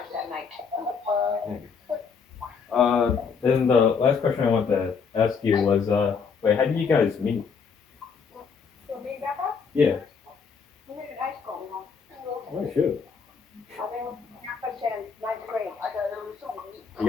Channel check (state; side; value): quieter; right; 5.8 dB